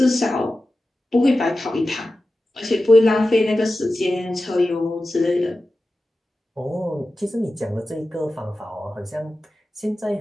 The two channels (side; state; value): both; normal; correlation 0.94